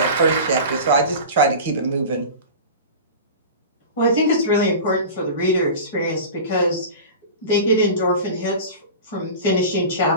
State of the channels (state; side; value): inverted; both; correlation -0.33